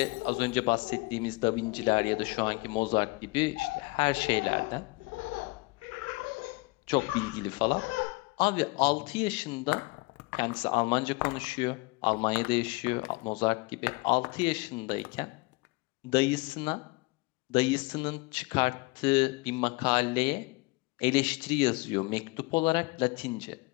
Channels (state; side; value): quieter; right; 25.1 dB